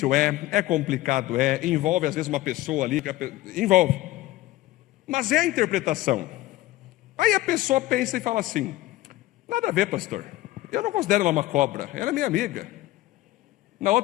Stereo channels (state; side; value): quieter; right; 16.9 dB